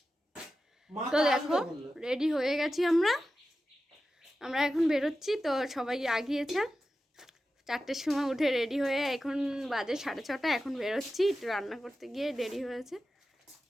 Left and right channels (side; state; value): both; normal; correlation 0.93